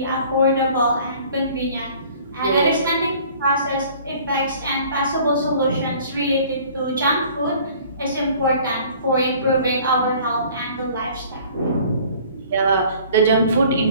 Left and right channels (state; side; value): inverted; both; correlation -0.51